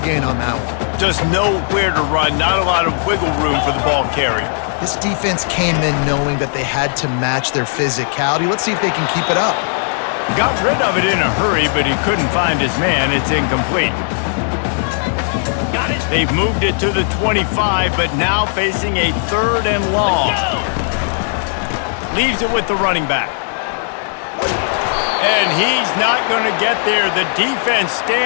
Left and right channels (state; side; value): silent; right; 68 dB below the other